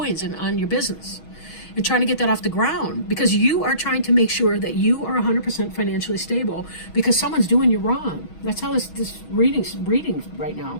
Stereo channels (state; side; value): late; right; 6.2 ms